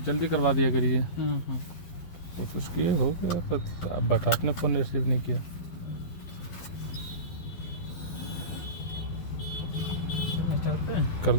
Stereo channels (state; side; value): late; right; 12 ms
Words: जल्दी करवा दिया करिए। हाँ। कोशिश किए, हो गया, पर अब बट आपने फ़ोन रिसीव नहीं किया। स्टार्ट पे कर